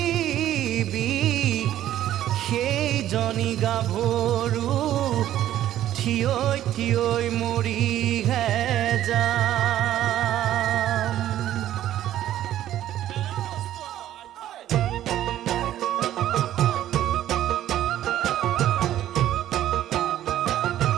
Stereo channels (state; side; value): quieter; left; 12.5 dB